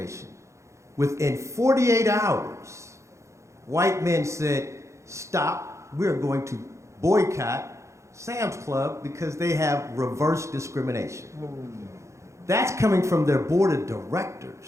Within 48 hours, white men said, stop, we're going to boycott Sam's Club because they have reverse discrimination. That's coming from their board of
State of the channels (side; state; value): left; late; 0.14 ms